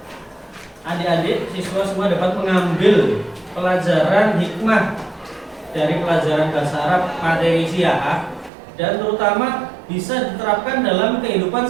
adik-adik siswa semua dapat mengambil pelajaran hikmah dari pelajaran bahasa Arab materi siah dan terutama bisa diterapkan dalam kehidupan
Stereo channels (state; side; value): drops out; left; at 8.5 s